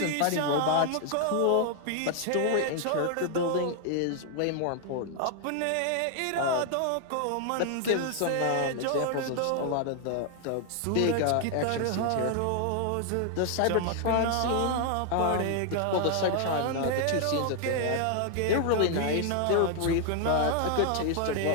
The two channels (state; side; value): different; both; correlation 0.00